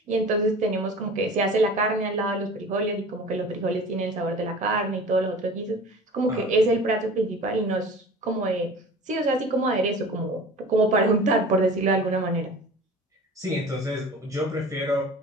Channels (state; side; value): normal; both; correlation 0.40